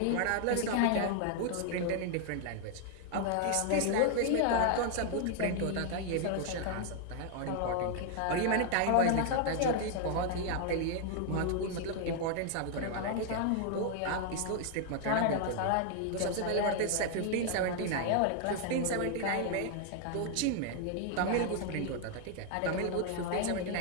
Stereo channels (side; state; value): both; different; correlation 0.00